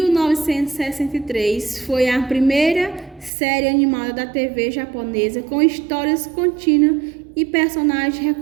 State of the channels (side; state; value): left; drops out; at 3.3 s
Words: foi a primeira série animada da TV japonesa com histórias contínuas e personagens